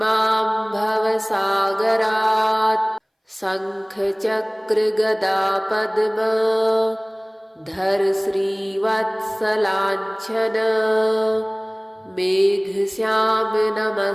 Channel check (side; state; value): both; identical; correlation 1.00